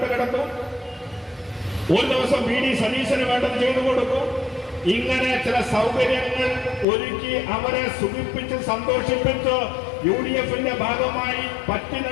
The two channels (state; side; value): drops out; right; at 6.9 s